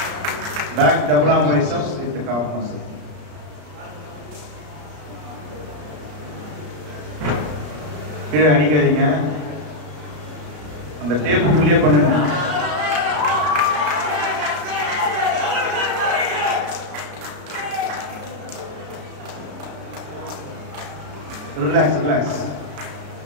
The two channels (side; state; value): left; late; 33 ms